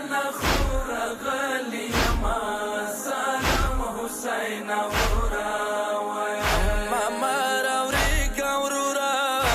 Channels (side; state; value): both; identical; correlation 1.00